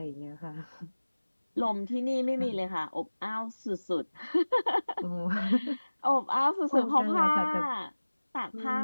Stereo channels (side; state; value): both; inverted; correlation -1.00